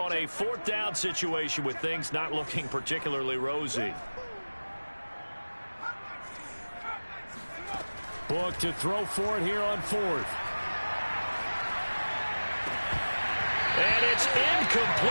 a 4th down situation with things not looking particularly rosy. Book to throw for it here on 4th. And it's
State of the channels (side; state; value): both; inverted; correlation -1.00